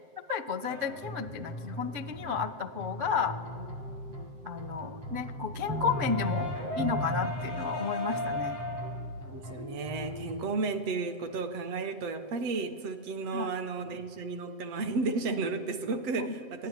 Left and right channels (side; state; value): left; late; 7.7 ms